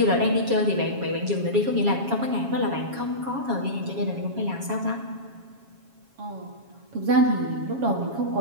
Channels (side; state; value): left; late; 7.3 ms